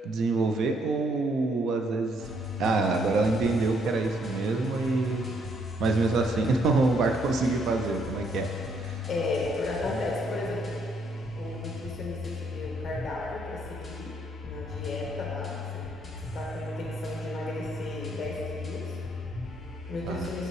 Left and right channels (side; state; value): both; normal; correlation 0.70